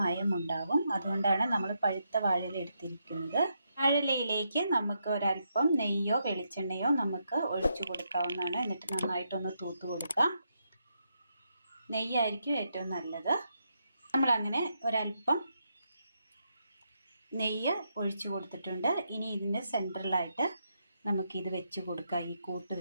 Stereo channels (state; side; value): inverted; both; correlation -0.81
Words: മയം ഉണ്ടാവും. അതുകൊണ്ടാണ് നമ്മൾ പഴുത്ത വാഴയില എടുത്തിരിക്കുന്നത്. വാഴയിലയിലേക്ക് നമുക്ക് ഒരൽപ്പം നെയ്യോ വെളിച്ചെണ്ണയോ നമുക്ക് ഒഴിച്ചു കൊടുക്കാവുന്നതാണ്. എന്നിട്ട് നന്നായിട്ടൊന്ന് തൂത്ത് കൊടുക്കാം. നെയ്യായിരിക്കും ഏറ്റവും നല്ലത്. നമ്മളങ്ങനെ ഒരൽപ്പം നെയ്യ് ഒഴിച്ചു കൊടുത്തിട്ടുണ്ട്. ഇനി ഇതിൻ്റെ സെൻറ്ററിലായിട്ട് നമുക്കിത് വെച്ച് കൊടുക്കാം. ഈ കൂട്ട്